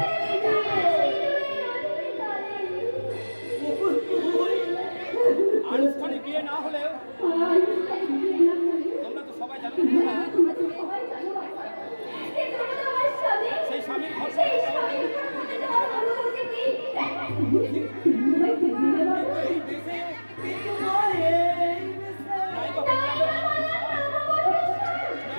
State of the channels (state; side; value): inverted; both; correlation -1.00